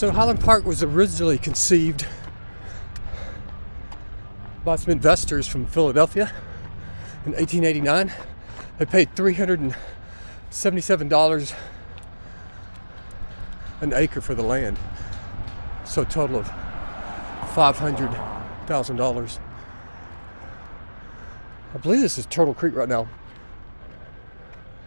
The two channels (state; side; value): inverted; both; correlation -1.00